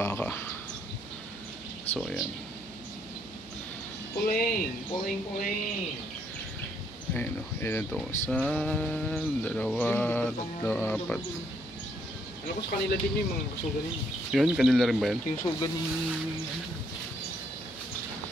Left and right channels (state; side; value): noise; right; hum, 24 dB below the sound